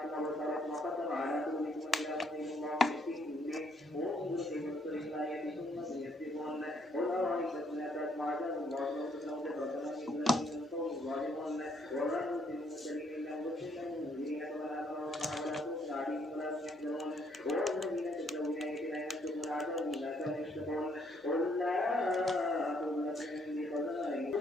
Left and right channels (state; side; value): normal; both; correlation 0.69